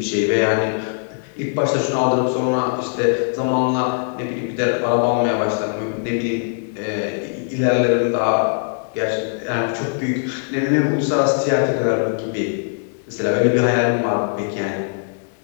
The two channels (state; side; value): silent; right; digital silence